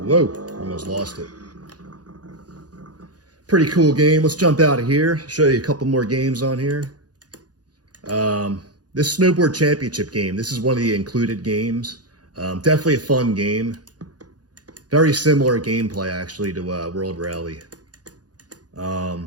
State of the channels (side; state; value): left; late; 0.69 ms